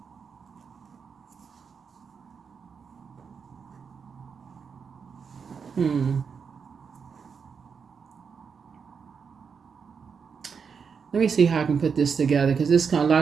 hmm. Let me see how I can put this together, because this kind of, a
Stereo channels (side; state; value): left; quieter; 6.1 dB